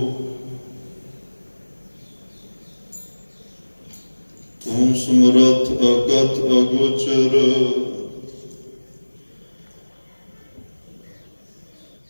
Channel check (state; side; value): inverted; both; correlation -1.00